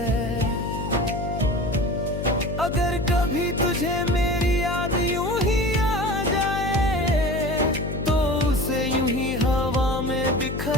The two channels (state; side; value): noise; left; hum, 5 dB below the sound